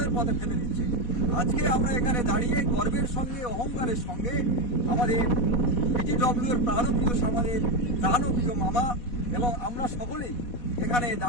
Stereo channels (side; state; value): right; late; 4.1 ms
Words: পথে ফেলে দিচ্ছে। আজকে আমরা এখানে দাঁড়িয়ে গর্বের সঙ্গে, অহংকারের সঙ্গে আমাদের পিটিডব্লিউর প্রাণপ্রিয় আমাদের প্রাণপ্রিয় মামা এবং আমরা সকলেই এখানে